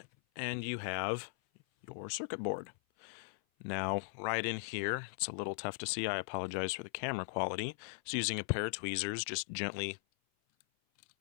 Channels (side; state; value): right; silent; 52 dB below the other